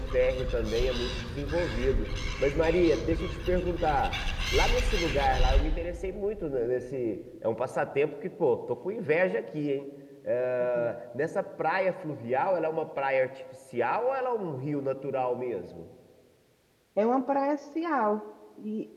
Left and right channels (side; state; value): both; identical; correlation 1.00